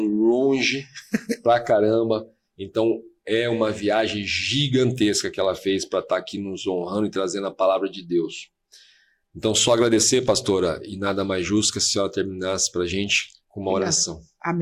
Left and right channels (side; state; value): both; identical; correlation 1.00